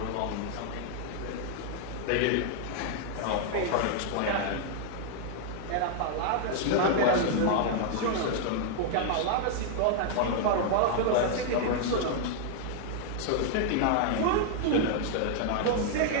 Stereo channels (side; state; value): both; different; correlation 0.00